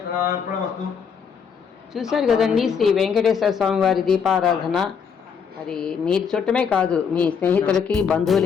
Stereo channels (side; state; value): right; quieter; 6.6 dB